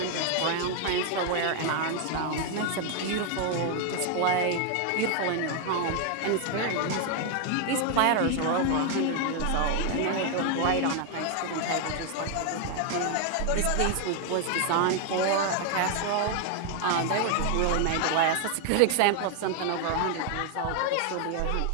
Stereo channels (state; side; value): different; both; correlation 0.00